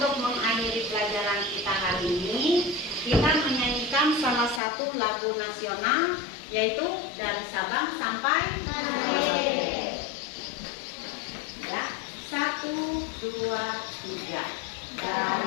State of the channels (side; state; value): right; drops out; at 4.6 s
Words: mengakhiri pelajaran kita hari ini, kita menyanyikan salah satu lagu nasional, yaitu Dari Sabang Sampai Merauke. Ya, 1, 2, 3.